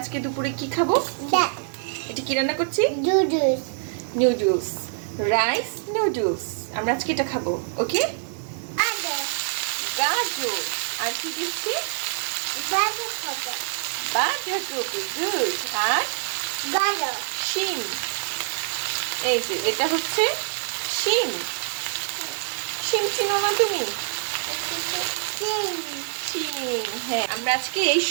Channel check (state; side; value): silent; left; digital silence